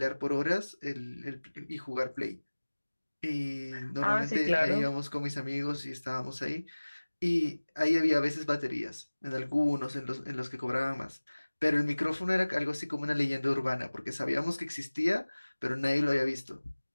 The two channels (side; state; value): both; inverted; correlation -1.00